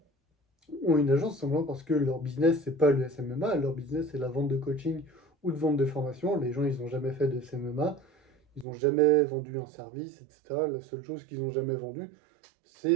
ont une agence simplement parce que leur business, c'est pas le SMMA, leur business, c'est la vente de coaching ou de vente de formation. Les gens, ils n'ont jamais fait de SMMA, ils n'ont jamais vendu un service, etc. La seule chose qu'ils n'ont jamais vendue,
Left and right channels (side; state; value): left; drops out; at 8.7 s